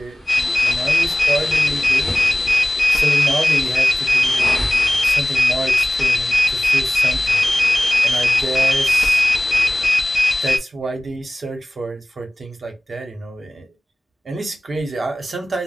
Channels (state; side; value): normal; both; correlation 0.96